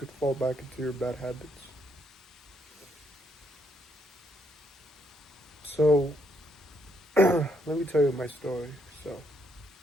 fall back into your bad habits. So, let me tell you my story. So,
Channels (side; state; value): both; normal; correlation 0.74